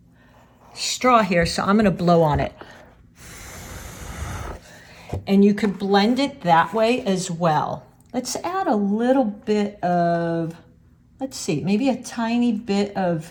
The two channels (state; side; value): identical; both; correlation 1.00